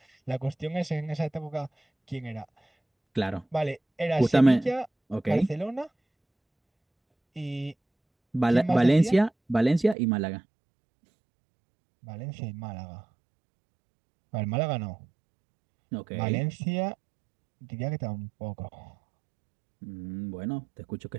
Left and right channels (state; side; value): drops out; left; at 10.0 s